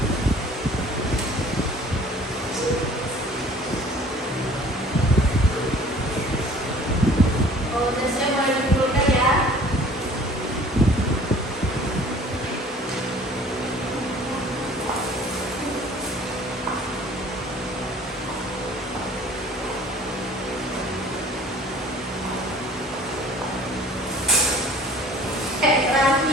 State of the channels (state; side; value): normal; both; correlation 0.50